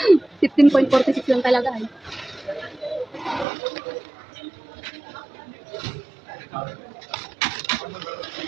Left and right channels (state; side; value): drops out; left; at 3.5 s